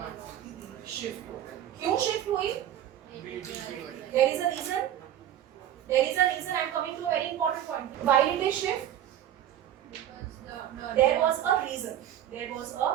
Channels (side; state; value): left; quieter; 11.2 dB